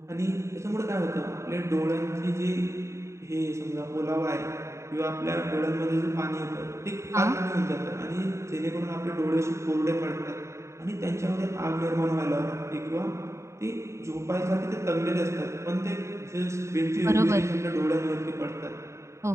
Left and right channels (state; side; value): late; left; 0.14 ms